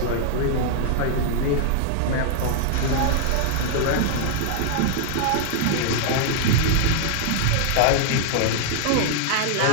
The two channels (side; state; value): both; different; correlation -0.01